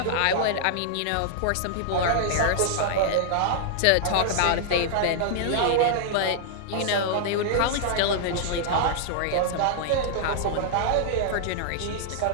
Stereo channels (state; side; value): different; both; correlation -0.01